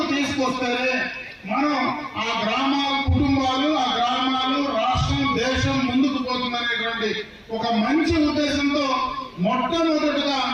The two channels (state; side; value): identical; both; correlation 1.00